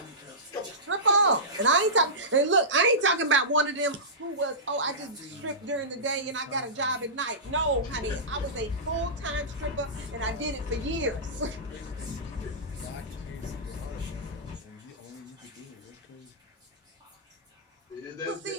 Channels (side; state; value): both; normal; correlation -0.18